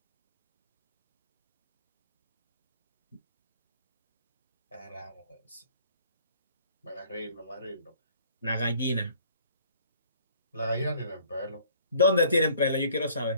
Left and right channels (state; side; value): inverted; both; correlation -0.55